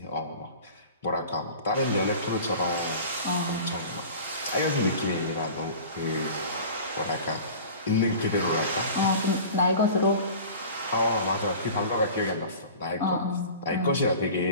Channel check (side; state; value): both; inverted; correlation -0.39